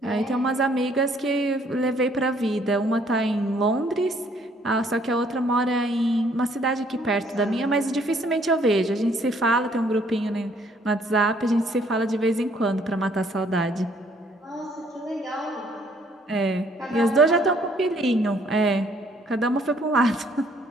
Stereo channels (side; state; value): both; normal; correlation 0.64